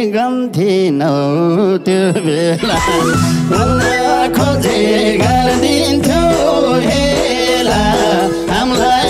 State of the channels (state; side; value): identical; both; correlation 1.00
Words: गन्थिनौ त्यो बेला बोल्न खोजे गरिदिन्थ्यो हेला